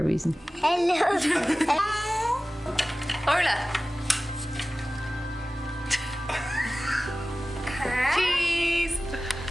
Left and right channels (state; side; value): normal; both; correlation 0.97